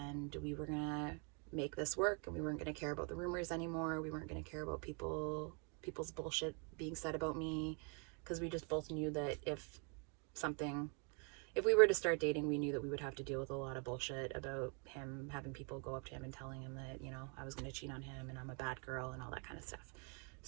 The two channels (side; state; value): left; quieter; 34.8 dB